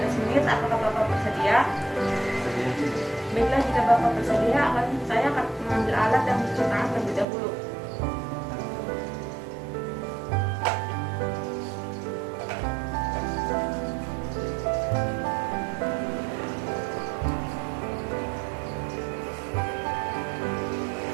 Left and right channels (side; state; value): left; drops out; at 7.2 s